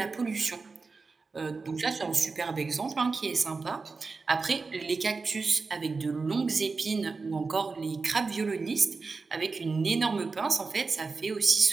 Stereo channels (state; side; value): quieter; left; 4.3 dB